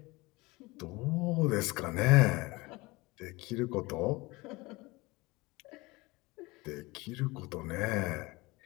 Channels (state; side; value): quieter; right; 22.9 dB